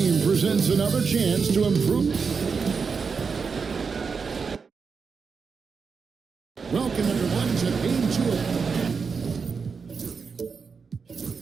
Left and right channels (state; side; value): quieter; left; 5.4 dB